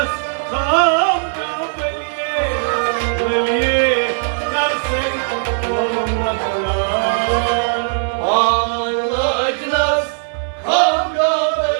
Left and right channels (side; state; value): left; silent; 67 dB below the other